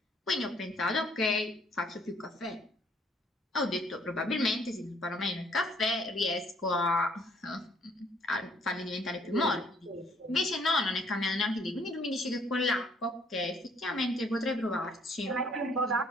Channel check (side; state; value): both; normal; correlation 0.63